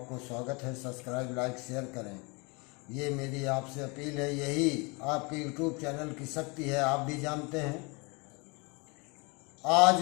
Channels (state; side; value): quieter; right; 29.2 dB